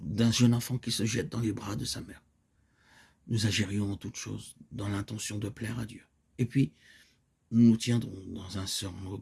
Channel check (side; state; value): both; identical; correlation 1.00